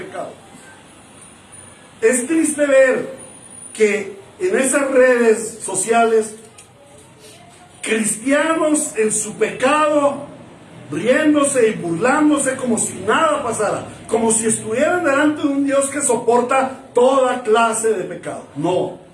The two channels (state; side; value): identical; both; correlation 1.00